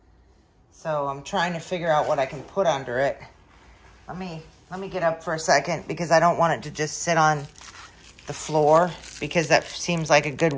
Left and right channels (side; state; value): both; identical; correlation 1.00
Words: So I'm trying to figure out what I can put under it. Let me get up for a second because I don't want it to just sit on the floor because that seems like a good